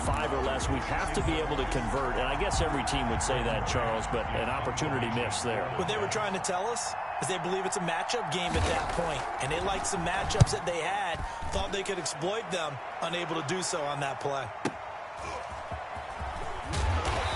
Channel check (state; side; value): identical; both; correlation 1.00